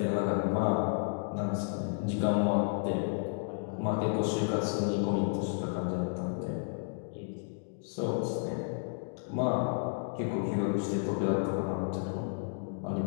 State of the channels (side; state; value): right; silent; digital silence